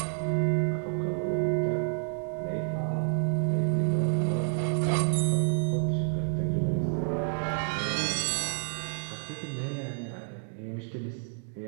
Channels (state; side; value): silent; left; 58 dB below the other